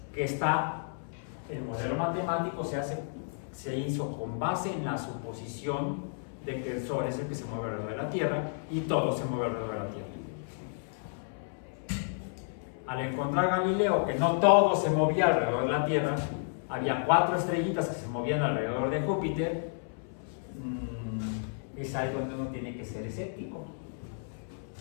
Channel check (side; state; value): right; silent; 57 dB below the other